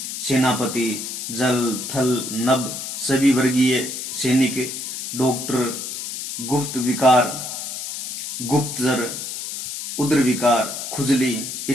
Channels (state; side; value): noise; left; hiss, 6 dB below the sound